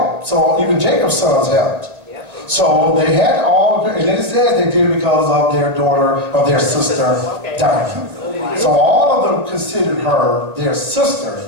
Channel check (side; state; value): left; late; 1.9 ms